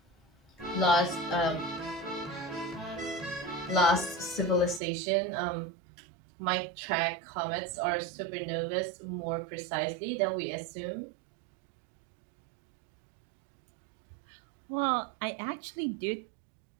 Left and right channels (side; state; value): left; drops out; at 4.8 s